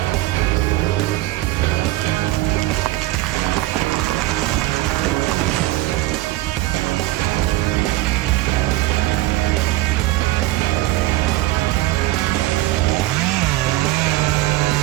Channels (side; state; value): left; quieter; 17.1 dB